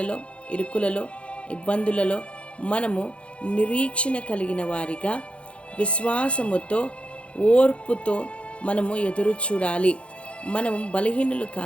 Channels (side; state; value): right; late; 0.060 ms